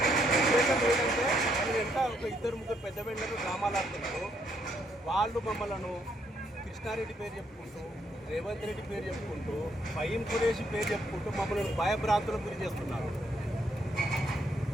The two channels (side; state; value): both; normal; correlation 0.73